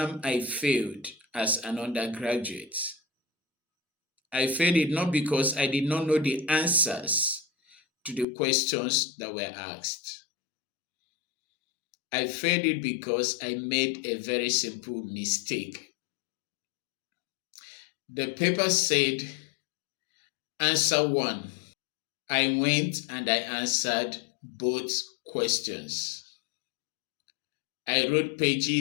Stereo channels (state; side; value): drops out; right; at 8.2 s